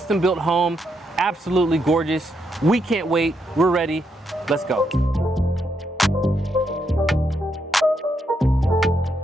built home, absolutely gorgeous. We can't wait, we're ready, let's go.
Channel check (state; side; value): normal; both; correlation 0.79